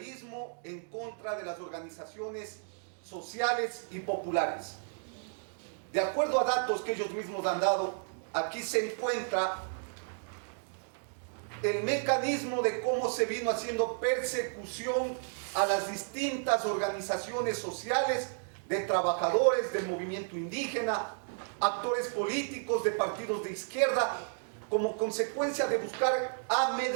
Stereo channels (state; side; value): silent; left; digital silence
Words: en contra de las organizaciones sociales y populares. De acuerdo a datos que ellos mismos han dado, aquí se encuentra el mecanismo de cómo se vino haciendo persecución a las distintas organizaciones sociales de trabajadores del movimiento indígena, actores políticos de partidos de izquierda, como consecuencia de buscar